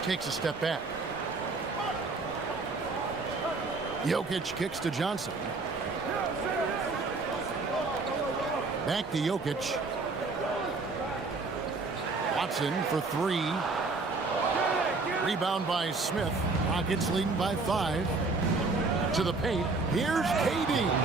Takes a step back. Jokic kicks to Johnson. Back to Jokic. Watson for 3. Rebound by Smith. Rockets leading by 5. To the paint. Here's KD.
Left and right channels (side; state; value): left; quieter; 3.8 dB